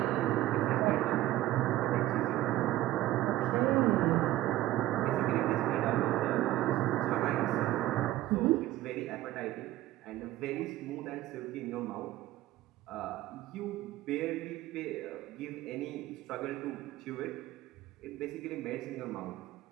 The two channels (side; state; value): left; quieter; 15.3 dB